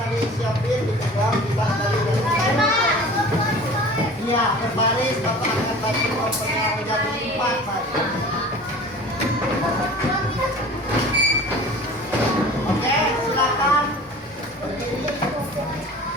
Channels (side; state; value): both; normal; correlation 0.42